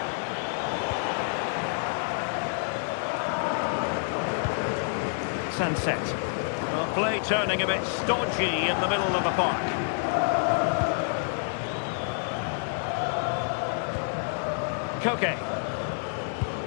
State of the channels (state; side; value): silent; right; 59 dB below the other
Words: Sunset. Well, play turning a bit stodgy in the middle of the park. Koke.